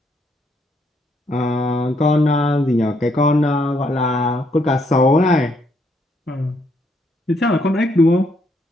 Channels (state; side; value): normal; both; correlation 0.72